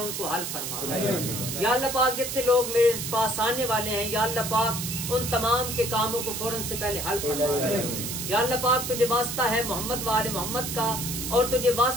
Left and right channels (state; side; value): noise; right; hiss, 4 dB below the sound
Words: کو حل فرما یا اللہ پاک. جتنے لوگ میرے پاس آنے والے ہیں یا اللہ پاک ان تمام کے کاموں کو فوراً سے پہلے حل فرما یا اللہ پاک. تجھے واسطہ ہے محمد و آل محمد کا اور تجھے